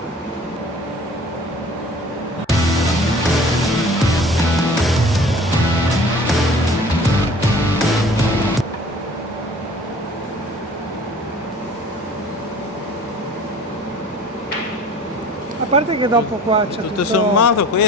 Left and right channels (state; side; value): normal; both; correlation 0.47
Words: A parte che dopo qua c'è Tutto sommato